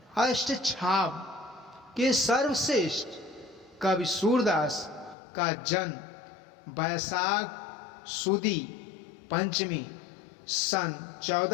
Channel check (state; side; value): drops out; right; at 5.2 s